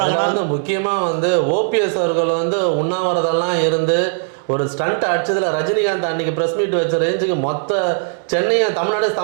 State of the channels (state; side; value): silent; left; 67 dB below the other